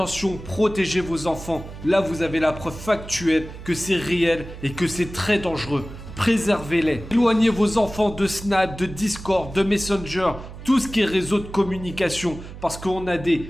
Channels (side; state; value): right; noise; hum, 13 dB below the sound